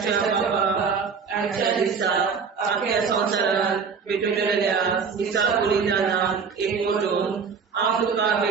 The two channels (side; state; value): left; quieter; 5.7 dB